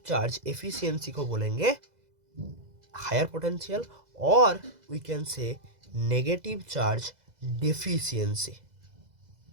charge efficiency को बोलेंगे हायर पोटेंशियल, और we can say negative charge deficiency.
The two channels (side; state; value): left; late; 2.0 ms